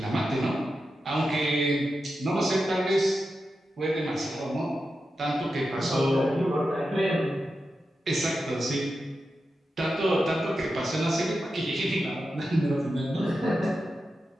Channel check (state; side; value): normal; both; correlation 0.90